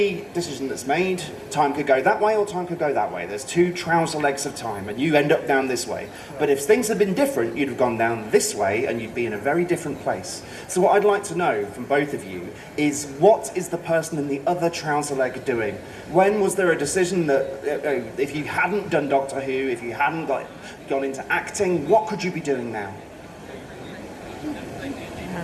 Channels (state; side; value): identical; both; correlation 1.00